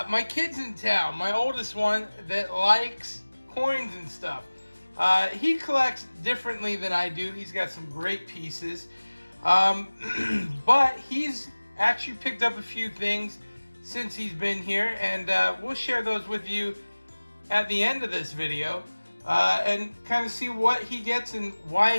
kid's in town, my oldest one that likes coins and stuff. He collects differently than I do. He's got some great pieces. But he's actually picked up a few things since he's been here, and we'll share those with you at the end of this video. And kind of see what he gets and why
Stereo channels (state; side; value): inverted; both; correlation -1.00